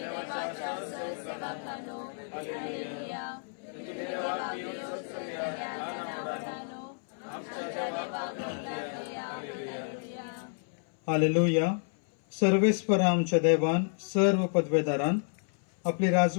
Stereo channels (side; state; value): right; silent; 57 dB below the other